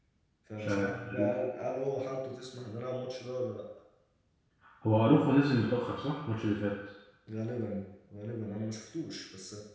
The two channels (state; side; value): identical; both; correlation 1.00